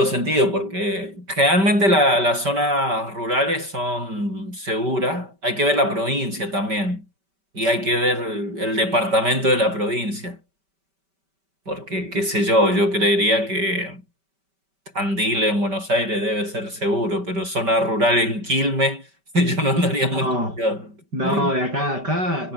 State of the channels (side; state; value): left; late; 5.2 ms